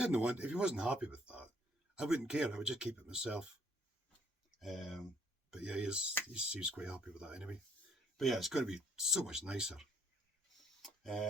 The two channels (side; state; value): both; normal; correlation 0.65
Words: he wasn't happy with that, I wouldn't care. I would just keep it myself. But yeah, he seems quite happy with that anyway. But yeah, it's going to be so much nicer.